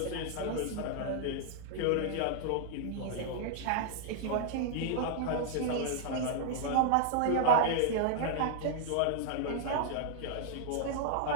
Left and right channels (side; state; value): both; different; correlation -0.01